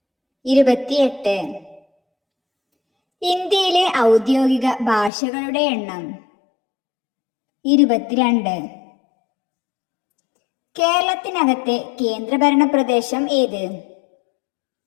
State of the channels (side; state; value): right; drops out; at 5.1 s